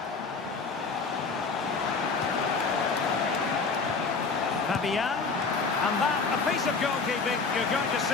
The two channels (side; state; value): right; quieter; 4.6 dB